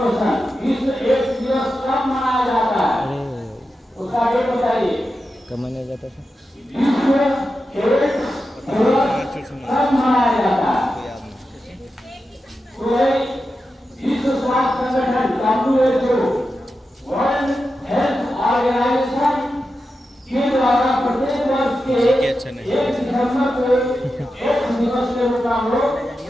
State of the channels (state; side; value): normal; both; correlation 0.90